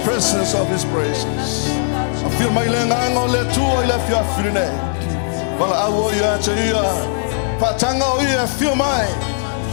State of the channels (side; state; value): right; silent; 60 dB below the other